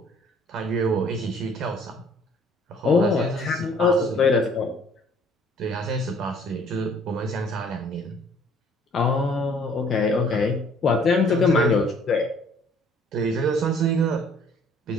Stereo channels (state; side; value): normal; both; correlation 0.58